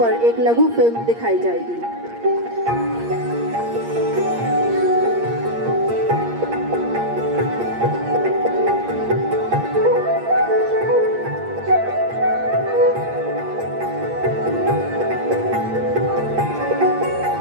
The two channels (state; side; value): late; left; 8.6 ms